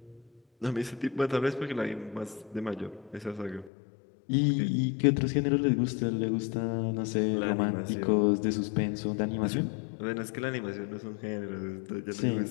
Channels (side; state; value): right; drops out; at 3.7 s